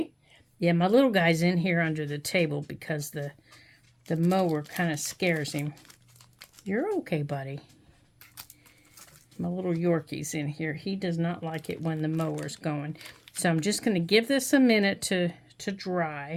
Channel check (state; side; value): identical; both; correlation 1.00